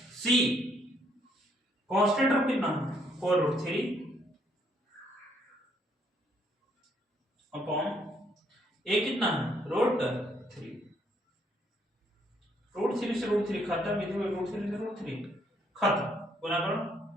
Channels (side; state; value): both; normal; correlation 0.70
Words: C constant of कितना 4 रूट 3 अपॉन ए कितना है रूट 3। रूट 3 से रूट 3 खत्म, इधर में रूट 3 से रूट 3 खत्म, गुना करो